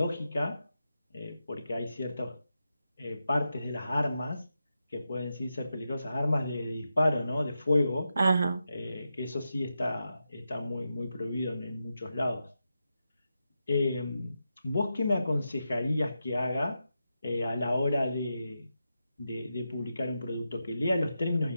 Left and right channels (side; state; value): both; inverted; correlation -0.88